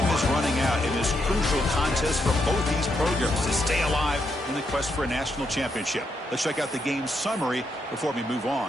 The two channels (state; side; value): normal; both; correlation 0.79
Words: is running out in this crucial contest for both these programs to stay alive in the quest for a national championship. Let's check out the game summary before we move on.